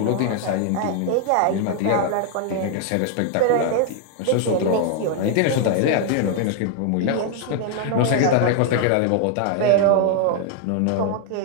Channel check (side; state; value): both; different; correlation 0.00